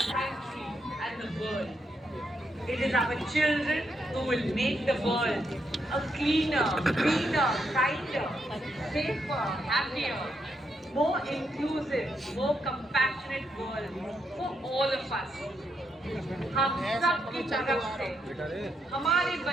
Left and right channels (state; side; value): normal; both; correlation 0.79